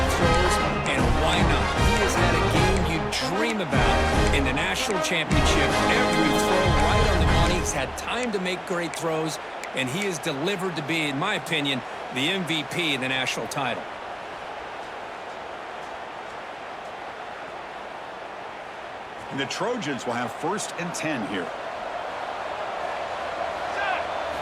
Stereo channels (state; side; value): identical; both; correlation 1.00